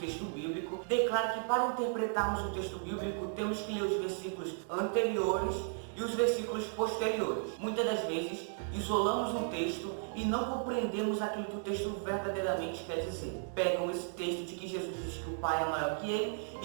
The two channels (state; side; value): silent; left; 55 dB below the other